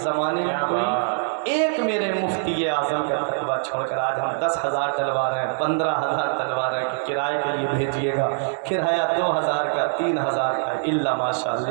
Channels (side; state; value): left; silent; digital silence